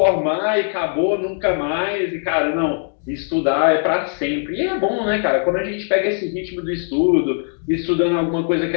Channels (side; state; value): right; silent; 66 dB below the other